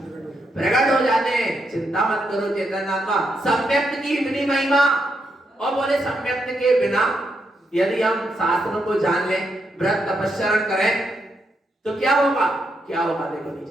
प्रकट हो जाते हैं। चिंता मत करो चैतन्य आत्मा, सम्यक्त की इतनी महिमा। और बोले सम्यक्त के बिना यदि हम शास्त्रों को जान लें, व्रत तपस्या करें तो क्या होगा? क्या होगा? देखो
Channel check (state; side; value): normal; both; correlation 0.80